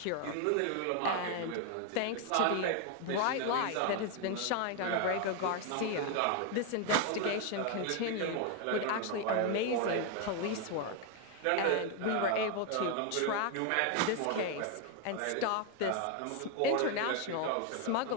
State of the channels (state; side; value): different; both; correlation 0.01